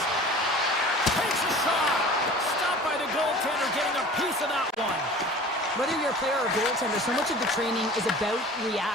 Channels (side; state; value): both; normal; correlation 0.42